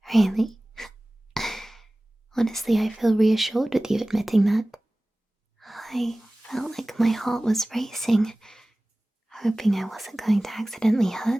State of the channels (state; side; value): normal; both; correlation 0.98